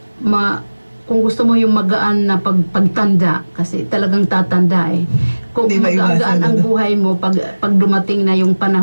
kung gusto mo yung magaan na pagtanda, kasi talagang tatanda eh. Kung Di magaan ang buhay mo pag dumating na yung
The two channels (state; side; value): inverted; both; correlation -1.00